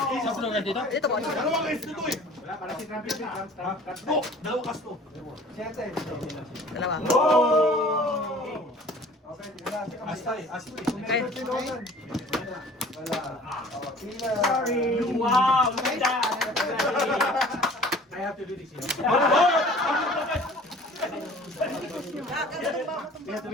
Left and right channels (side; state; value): both; normal; correlation 0.48